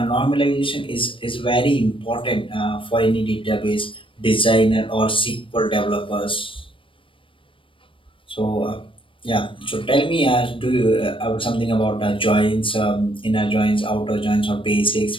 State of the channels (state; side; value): late; right; 0.25 ms